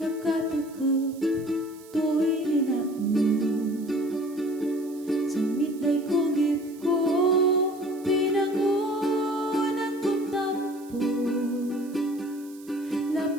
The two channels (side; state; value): right; noise; hiss, 23 dB below the sound